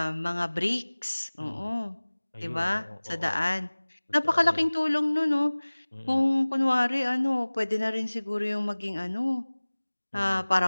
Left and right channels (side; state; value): both; inverted; correlation -1.00